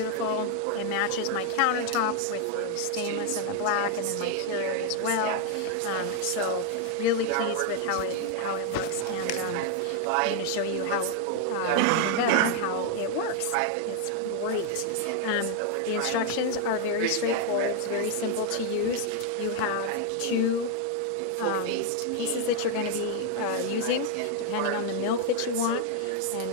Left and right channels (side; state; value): both; different; correlation 0.01